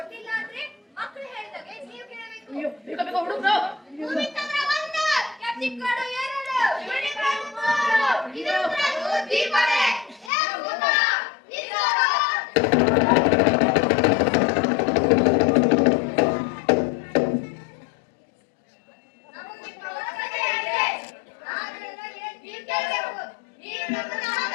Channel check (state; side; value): drops out; right; at 10.3 s